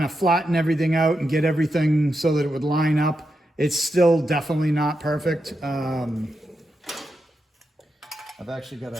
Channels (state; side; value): normal; both; correlation 0.86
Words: of flatten everything out and get everything so that it would line up. It's still definitely not perfect. I've actually got